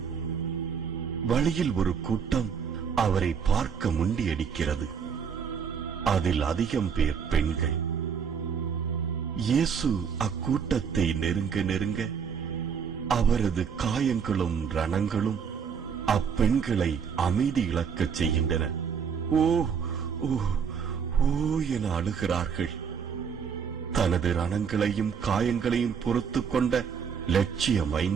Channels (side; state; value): left; quieter; 6.8 dB